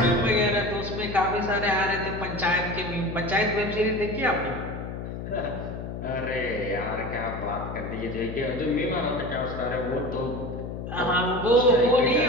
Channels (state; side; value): noise; left; hum, 7 dB below the sound